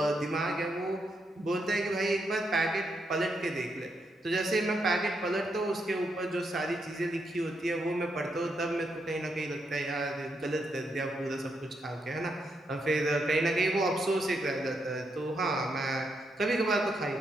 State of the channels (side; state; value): both; normal; correlation 0.80